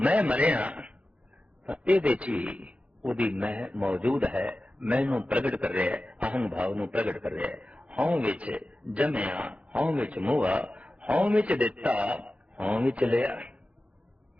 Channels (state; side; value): late; left; 0.063 ms